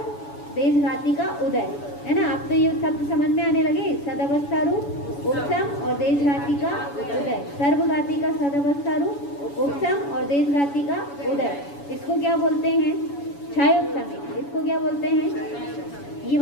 देशघाती का उदय, है ना। आप तो ये शब्द समझ में आने लगे, सदवस्था रूप उपशम और देशघाती का उदय। सर्वघाती का सदवस्था रूप उपशम और देशघाती का उदय, इसको क्या बोलते हैं, क्षयोपशमिक। इसको क्या बोलते हैं, ये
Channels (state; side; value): late; right; 7.1 ms